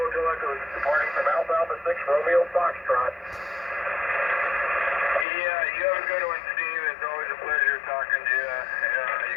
Echo, departing from Alpha Alpha 6, Romeo Foxtrot. Yeah, you have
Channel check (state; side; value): drops out; right; at 5.2 s